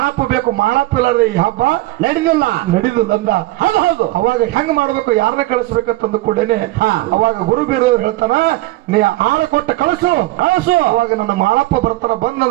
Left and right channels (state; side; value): quieter; left; 18.2 dB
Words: ಬೇಕು, ಮಾಳಪ್ಪ ಇಲ್ಲಾರ್ದೆ ಈ ಹಬ್ಬ ನಡೀದಿಲ್ಲ ಅಂದ. ಹೌದು. ಅವಾಗ ಹೆಂಗ್ ಮಾಡ್ಬೇಕು, ಯಾರನ್ನ ಕಳಿಸ್ಬೇಕಂತಂದು ಕೂಡೇನೆ ಅವಾಗ ಗುರು ಬೀರದೇವ್ರು ಹೇಳ್ತಾನ, ನೀ ಆಳ ಕೊಟ್ಟ ಕಳಿಸು. ಅವಾಗ ನನ್ನ ಮಾಳಪ್ಪ ಬರ್ತಾನ,